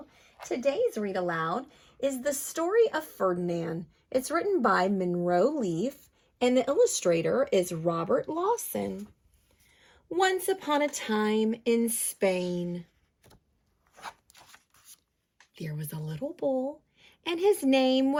Today's read aloud is The Story of Ferdinand. It's written by Munro and the illustrator is Robert Lawson. Once upon a time in Spain, there was a little bull, and his name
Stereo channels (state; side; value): identical; both; correlation 1.00